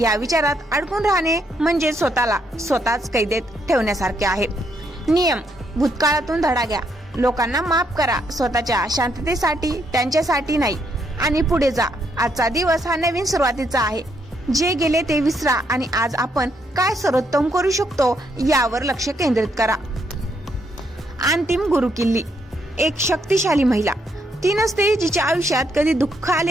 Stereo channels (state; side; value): normal; both; correlation 0.75